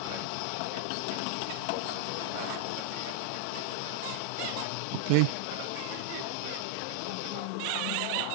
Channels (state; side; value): different; both; correlation 0.00